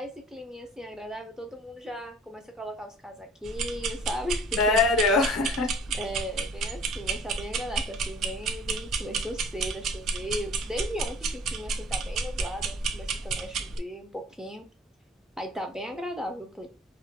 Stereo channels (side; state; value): both; normal; correlation 0.51